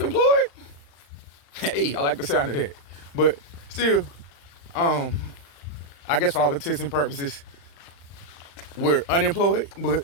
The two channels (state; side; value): late; right; 35 ms